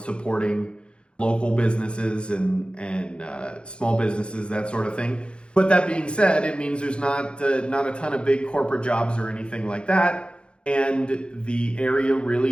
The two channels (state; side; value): late; right; 0.056 ms